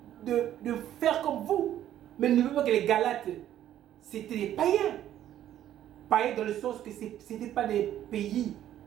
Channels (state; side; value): quieter; left; 11.7 dB